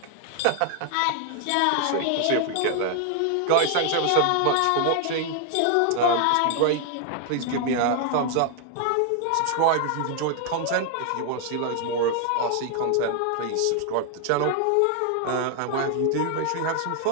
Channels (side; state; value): both; different; correlation 0.00